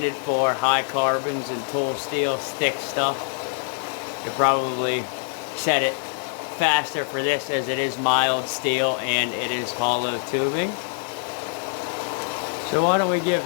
for high carbons and tool steel thick stuff. You probably set it faster for this, as it is mild steel and it is hollow tubing. So why don't we give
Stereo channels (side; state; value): right; silent; 57 dB below the other